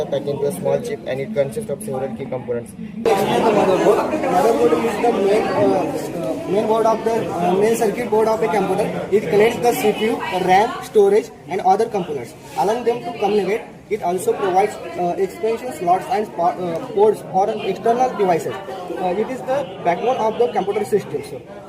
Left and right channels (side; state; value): both; identical; correlation 1.00